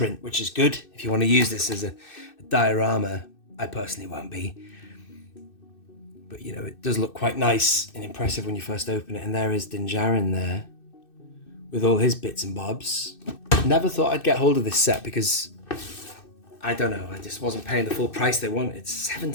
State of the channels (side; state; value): right; late; 2.6 ms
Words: which is good. If you want to use this as a diorama, I personally won't be. But it does look quite nice and impressive when you first open it. And there is Din Djarin there with all his bits and bobs. Never thought I'd get hold of this set because I don't know, I just wasn't paying the full price they wanted. It's